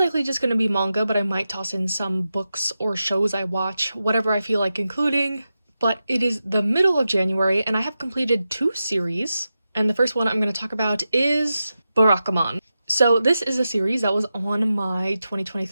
just going to be manga, but I might toss in some books or shows I watch, whatever I feel like including. But it is the middle of January, and I have completed 2 series, and the first one I'm going to talk about is Barakamon. So this is a series that was on my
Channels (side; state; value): both; inverted; correlation -0.91